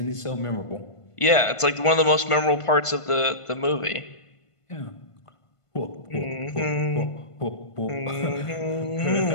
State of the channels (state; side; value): late; right; 1.5 ms